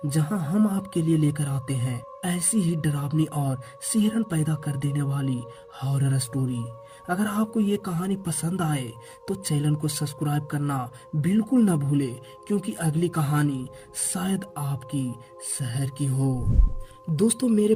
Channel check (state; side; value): identical; both; correlation 1.00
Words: जहां हम आपके लिए लेकर आते हैं ऐसी ही डरावनी और सिहरन पैदा कर देने वाली हॉरर स्टोरी। अगर आपको ये कहानी पसंद आए तो चैनल को सब्सक्राइब करना बिल्कुल न भूले, क्योंकि अगली कहानी शायद आपकी शहर की हो। दोस्तों, मेरे